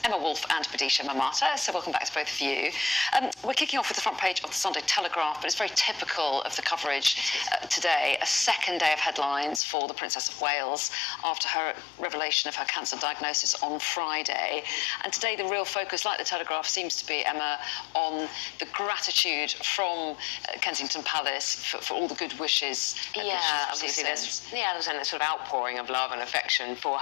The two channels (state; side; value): drops out; right; at 9.6 s